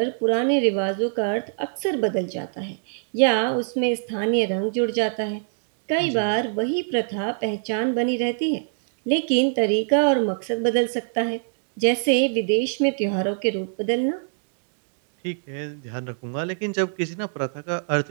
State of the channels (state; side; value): silent; left; digital silence